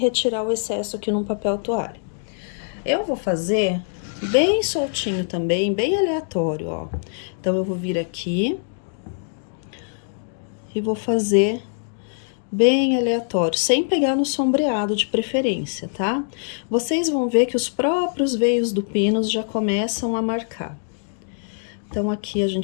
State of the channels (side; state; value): right; silent; digital silence